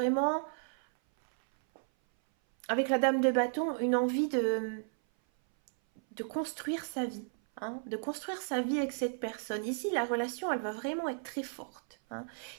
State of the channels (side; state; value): left; silent; 55 dB below the other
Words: avec la dame de bâton, une envie de construire sa vie, hein, de construire sa vie avec cette personne. Ici, la relation, elle va vraiment être très forte, hein.